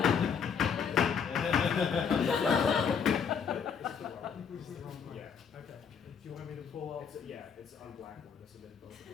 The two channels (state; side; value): quieter; right; 6.8 dB